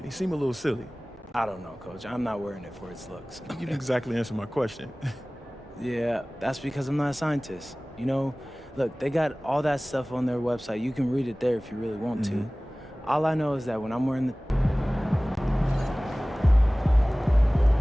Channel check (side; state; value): both; normal; correlation 0.98